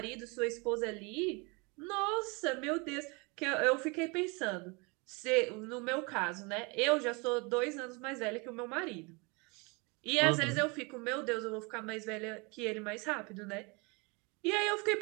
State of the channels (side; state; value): left; quieter; 29.2 dB